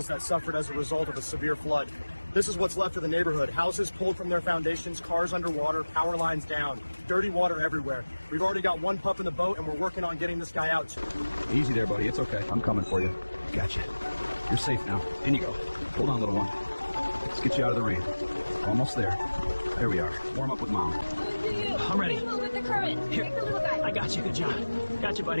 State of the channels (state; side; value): inverted; both; correlation -1.00